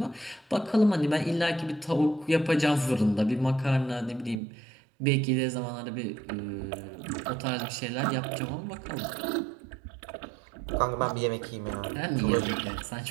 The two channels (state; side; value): drops out; left; at 4.4 s